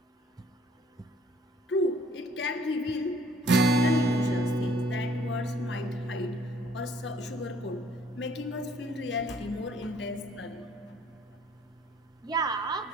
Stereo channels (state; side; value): normal; both; correlation 0.59